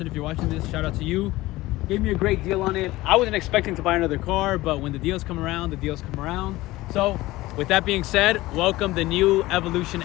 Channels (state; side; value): quieter; right; 18.4 dB